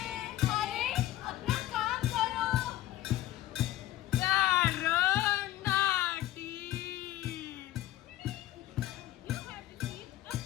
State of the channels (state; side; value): quieter; right; 14.5 dB